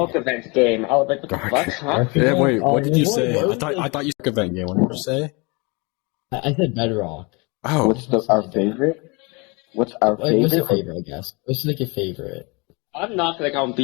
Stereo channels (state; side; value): quieter; right; 28.5 dB